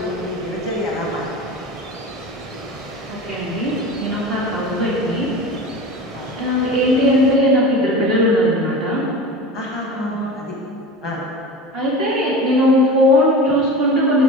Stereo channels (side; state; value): both; normal; correlation 0.32